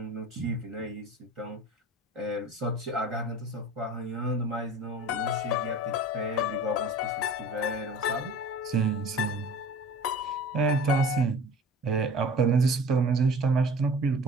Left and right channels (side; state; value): both; normal; correlation 0.42